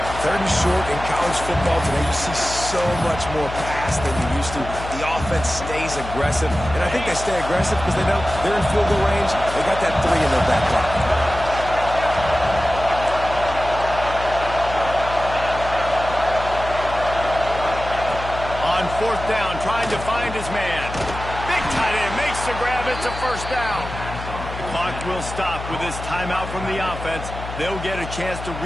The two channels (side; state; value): left; noise; hum, 9 dB below the sound